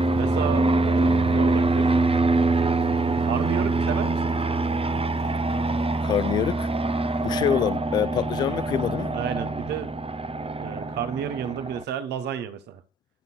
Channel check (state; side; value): normal; both; correlation 0.68